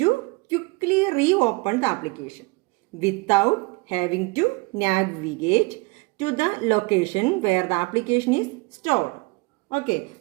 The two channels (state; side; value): quieter; left; 25.8 dB